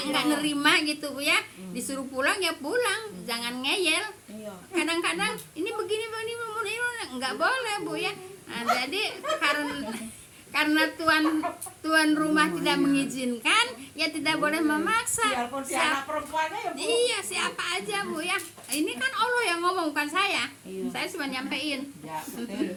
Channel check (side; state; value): both; identical; correlation 1.00